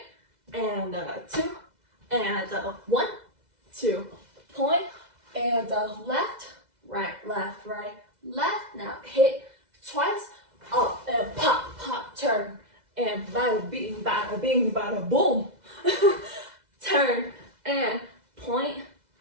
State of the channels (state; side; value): late; left; 2.0 ms